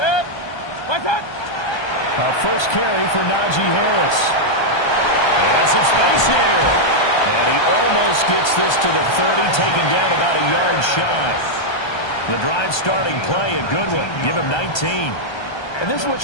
First carry for Najee Harris. And some space here. And he almost gets this to the 30, taken down about a yard shy. The drive starting play, a good one. Give him 19. And this is what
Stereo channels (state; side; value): late; right; 1.3 ms